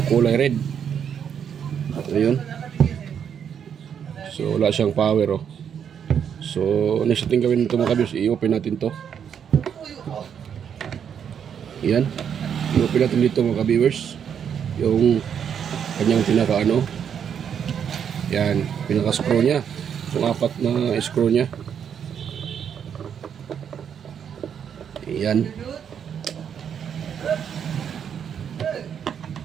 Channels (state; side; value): quieter; left; 8.1 dB